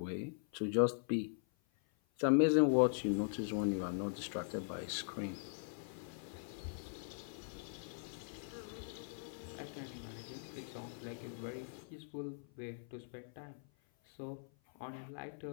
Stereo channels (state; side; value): silent; right; 50 dB below the other